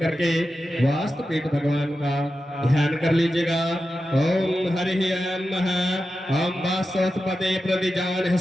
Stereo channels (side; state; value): both; normal; correlation 0.91